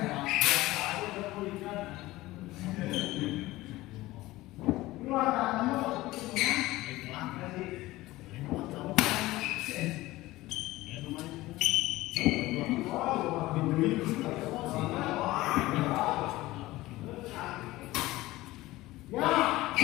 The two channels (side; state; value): right; quieter; 18.2 dB